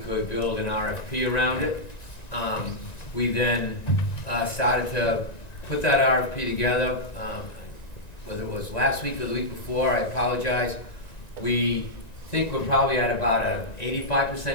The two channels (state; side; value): late; right; 1.9 ms